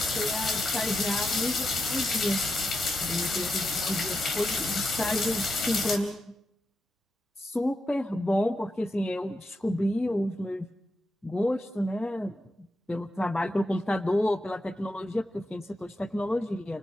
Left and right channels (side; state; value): both; normal; correlation 0.87